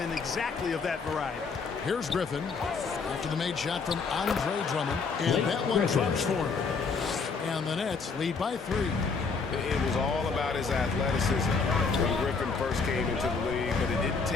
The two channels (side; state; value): right; quieter; 4.9 dB